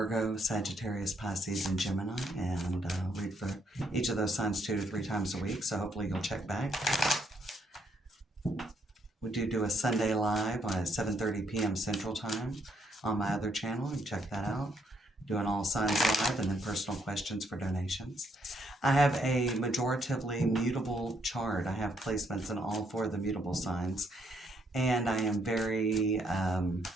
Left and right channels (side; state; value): both; normal; correlation 0.72